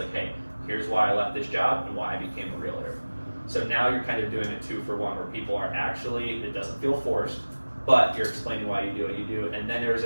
hey, here's why I left this job and why I became a realtor. So now you're kind of doing a 2-for-1 where people are actually, it doesn't feel forced, but you're explaining why you do what you do, and then there's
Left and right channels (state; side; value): inverted; both; correlation -1.00